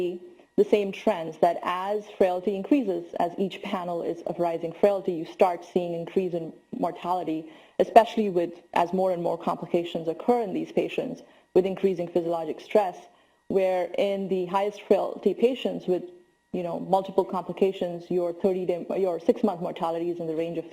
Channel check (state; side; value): identical; both; correlation 1.00